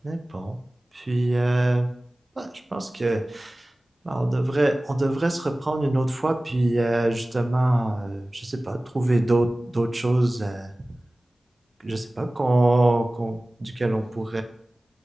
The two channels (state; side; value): normal; both; correlation 0.98